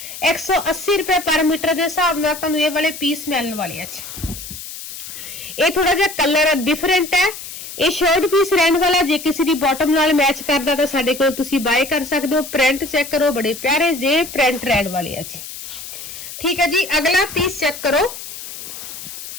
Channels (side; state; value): left; noise; hiss, 11 dB below the sound